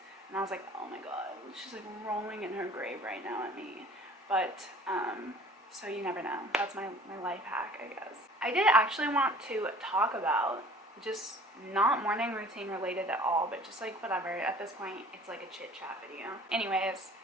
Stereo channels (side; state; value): both; normal; correlation 0.49